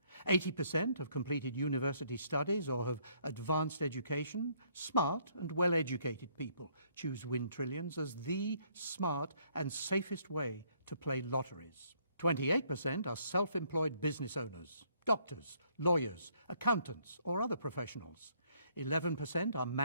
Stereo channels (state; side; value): inverted; both; correlation -0.67